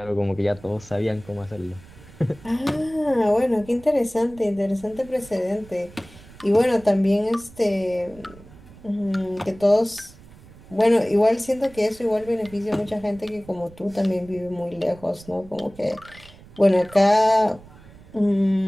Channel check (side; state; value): right; noise; rumble, 22 dB below the sound